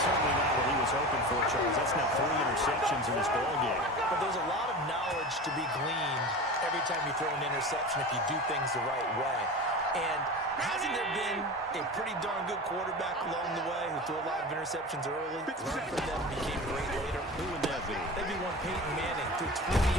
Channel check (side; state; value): both; normal; correlation 0.31